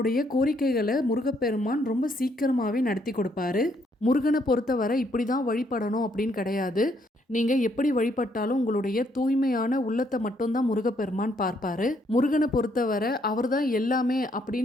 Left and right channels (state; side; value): normal; both; correlation 0.71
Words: கோரிக்கைகளை முருகப்பெருமான் ரொம்ப சீக்கிரமாகவே நடத்தி கொடுப்பாரு. முருகனை பொறுத்தவரை இப்படி தான் வழிபடணும் அப்படின்னு கிடையாது. நீங்கள் எப்படி வழிபட்டாலும் உங்களுடைய தூய்மையான உள்ளத்தை மட்டும்தான் முருகப்பெருமான் பார்ப்பாரு. முருகனை பொறுத்தவரை அவர் தான் எல்லாமே